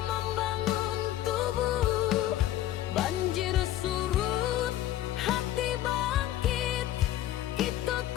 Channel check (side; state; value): right; quieter; 13.3 dB